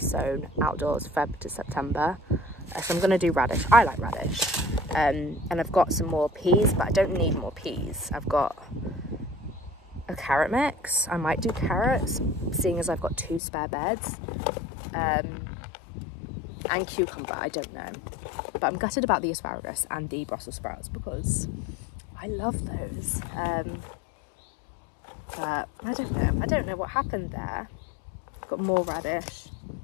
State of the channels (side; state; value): right; drops out; at 13.4 s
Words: outdoors Feb to September. So I'm going to do radish. I like radish. And I've got some more peas, but I don't need more peas. I've got a carrot mix. I might do carrots, seeing as I've got 2 spare beds. And cucumber, I don't know. But I'm gutted about the asparagus and the Brussels sprouts because I love those. But I don't know. I don't know what happened there. Got more radish.